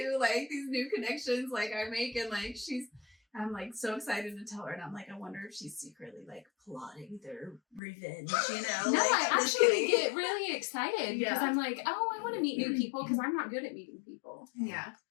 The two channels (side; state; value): right; drops out; at 7.8 s